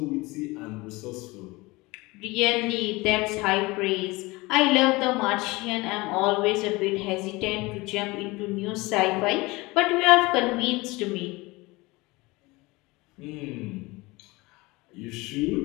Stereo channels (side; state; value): right; quieter; 22.7 dB